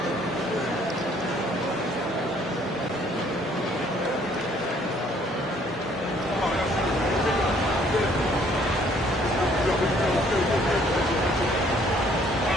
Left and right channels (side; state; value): both; normal; correlation 0.61